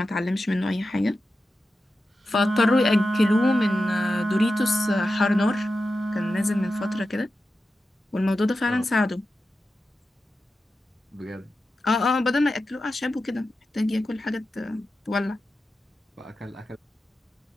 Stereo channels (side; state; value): both; normal; correlation 0.91